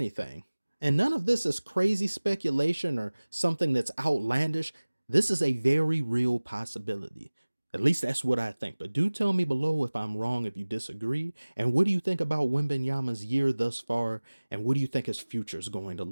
And none of this is crazy speculation or something that's outlandish. This is a very real possibility. At least that's what I think. But do tell me below if I'm wrong, if you disagree. And what do you think about Wembanyama's year thus far? And what do you think his future is going to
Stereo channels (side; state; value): both; inverted; correlation -1.00